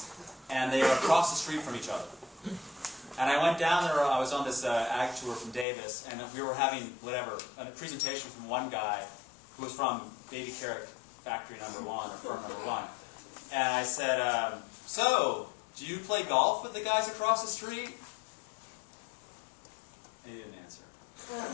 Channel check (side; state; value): right; drops out; at 5.7 s